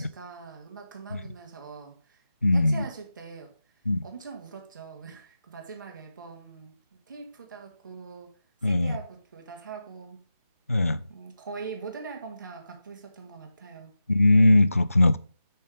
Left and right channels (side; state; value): both; inverted; correlation -0.94